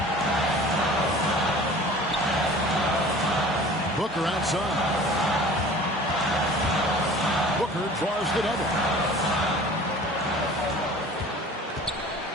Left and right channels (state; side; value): normal; both; correlation 0.44